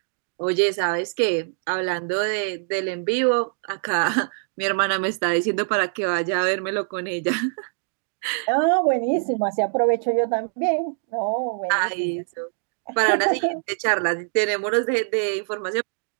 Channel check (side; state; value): left; silent; digital silence